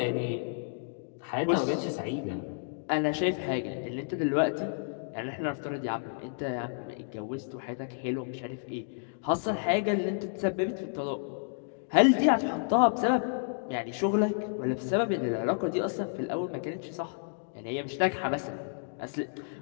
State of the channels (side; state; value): right; silent; digital silence